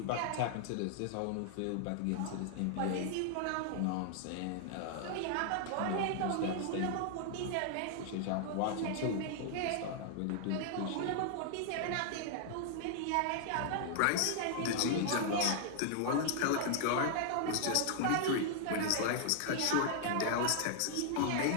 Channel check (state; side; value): different; both; correlation 0.00